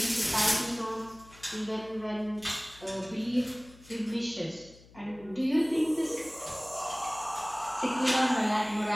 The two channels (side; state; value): left; noise; hum, 23 dB below the sound